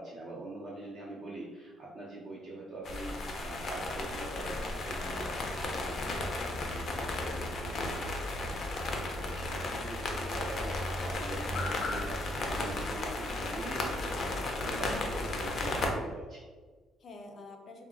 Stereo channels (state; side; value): normal; both; correlation 0.72